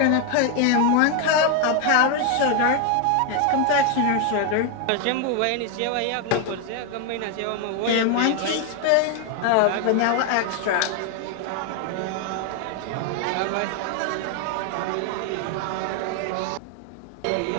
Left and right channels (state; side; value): different; both; correlation 0.01